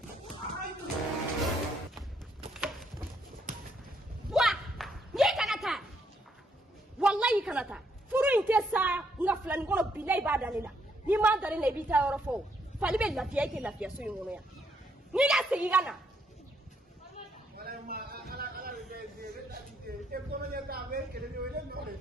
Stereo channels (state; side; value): normal; both; correlation 0.73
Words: Wallahi kanata furu inte sa nga fulani ngono bilay ba dalila ni ma dalila bi ta yoro fo fali be lafiya ke lafiya so ngono ya ni ga sigi gana Wala ma ala de da de e ko nya ta be ke de wele no de.